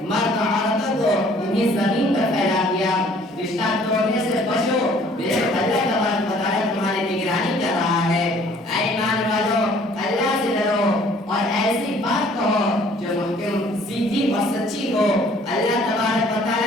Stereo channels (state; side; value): normal; both; correlation 0.57